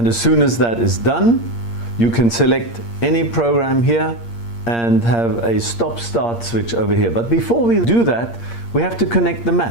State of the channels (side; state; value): right; late; 8.6 ms